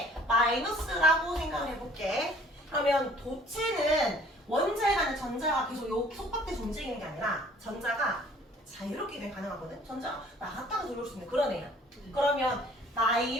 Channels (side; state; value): both; normal; correlation 0.54